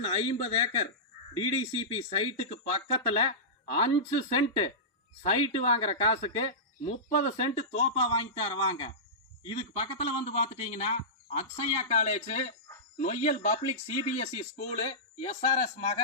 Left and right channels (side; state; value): both; normal; correlation -0.17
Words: 50 ஏக்கர் டிடிசிபி சைட்டுக்கு பக்கத்தில் 5 சென்ட் சைட்டு வாங்குற காசுக்கு 30 சென்ட் தோப்பா வாங்கி தருவாங்க. இதுக்கு பக்கத்தில் வந்து பார்த்துட்டீங்கன்னா Akshaya college, Noyyal public CBSE school, SRS